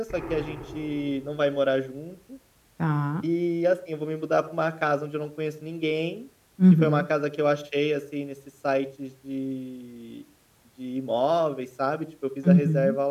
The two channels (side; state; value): both; identical; correlation 1.00